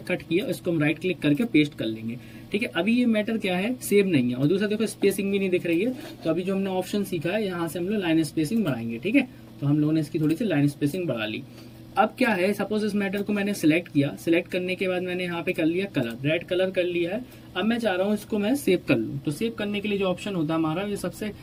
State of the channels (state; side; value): identical; both; correlation 1.00